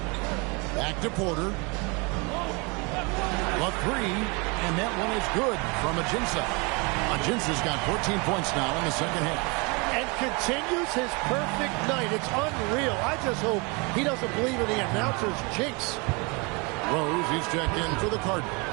Back to Porter. A 3, and that one is good from Ajinça. Ajinça's got 14 points now in the second half. And continues his perfect night. It's unreal. I just hope he doesn't believe in the announcer's jinx. Rose, he's checked in for the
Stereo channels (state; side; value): quieter; left; 29.8 dB